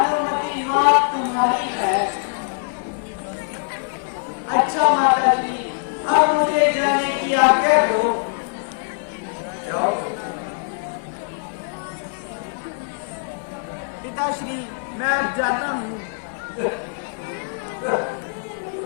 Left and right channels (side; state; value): right; silent; digital silence